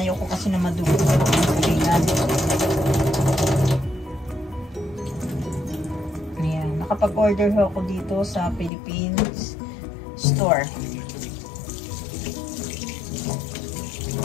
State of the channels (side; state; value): right; drops out; at 8.7 s